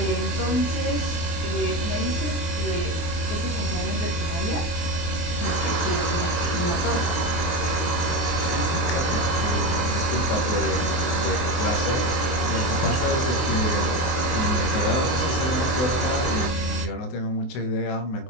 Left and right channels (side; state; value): right; late; 23 ms